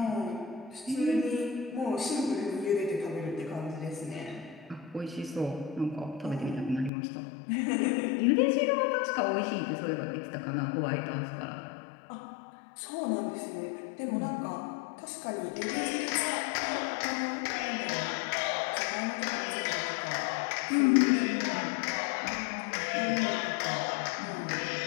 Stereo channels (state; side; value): drops out; right; at 6.9 s